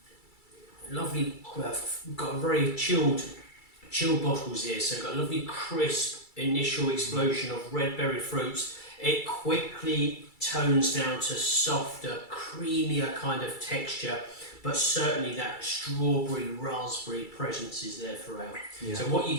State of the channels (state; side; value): late; right; 2.3 ms